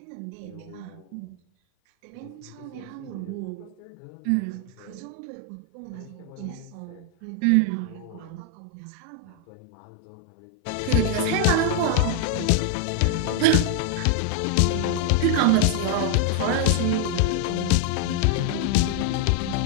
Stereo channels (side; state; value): both; different; correlation 0.00